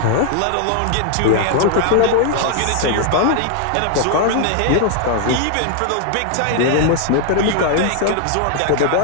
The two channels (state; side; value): different; both; correlation 0.00